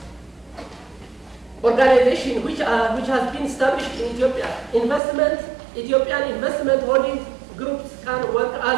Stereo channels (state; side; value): drops out; left; at 5.0 s